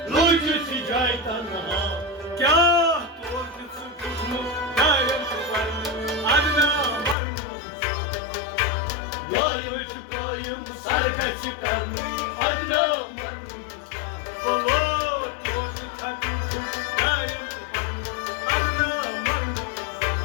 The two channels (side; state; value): right; drops out; at 7.2 s